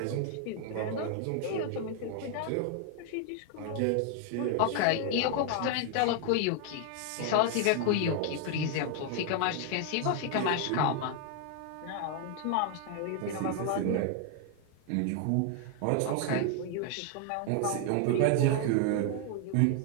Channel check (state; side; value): different; both; correlation 0.00